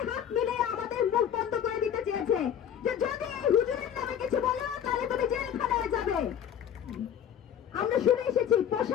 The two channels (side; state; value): right; quieter; 9.1 dB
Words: হাত মিলিয়ে আমাদের মুখ বন্ধ করে দিতে চেয়েছে যে যদি এই হুজুরের নামে কিছু বলো তাহলে তুমি জেলখানায় যাবে। আমরা শুনে এসেছি